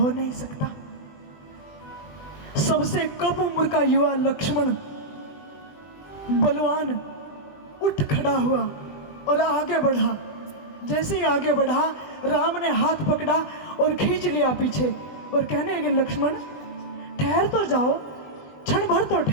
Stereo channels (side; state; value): right; late; 20 ms